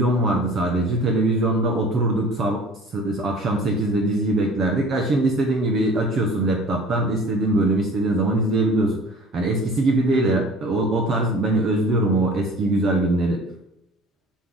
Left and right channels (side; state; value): both; normal; correlation 0.45